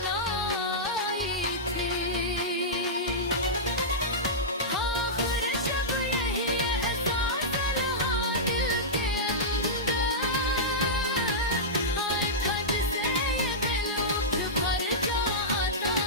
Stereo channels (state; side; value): normal; both; correlation -0.14